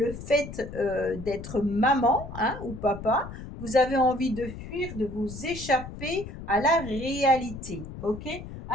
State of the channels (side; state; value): left; noise; rumble, 11 dB below the sound